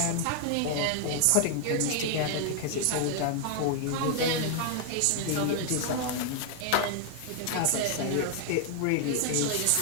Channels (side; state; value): both; different; correlation 0.00